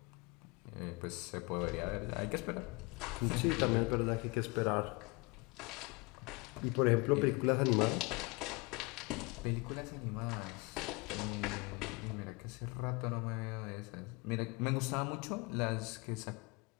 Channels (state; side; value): quieter; right; 26.8 dB